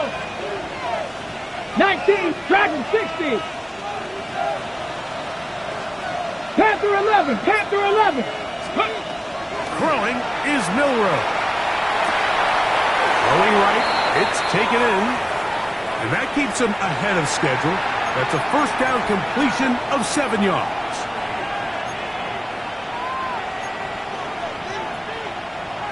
19, Dragon 60. Panther 11, Panther 11. Throwing is Milroe. Throwing right, it's taken in. And that keeps him ahead of schedule. That's a 1st down completion of 7 yards.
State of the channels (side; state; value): both; identical; correlation 1.00